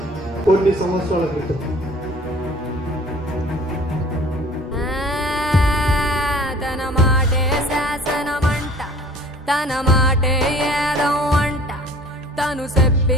కొన్ని సంవత్సరాల క్రితం తన మాటే శాసనమంట, తన మాటే ఏదం అంట, తను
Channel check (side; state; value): both; normal; correlation 0.49